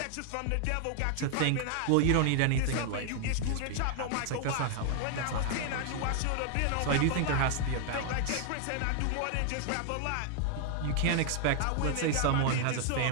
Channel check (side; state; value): both; different; correlation 0.00